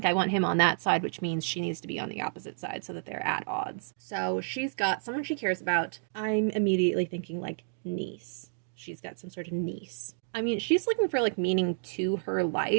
I want him on that side, which means she needs to be on the opposite side so that they're at odds. So she's got someone she cares about. I'm immediately thinking like niece. She's got some sort of niece. I mean, she's looking for like meaning to her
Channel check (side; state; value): left; silent; digital silence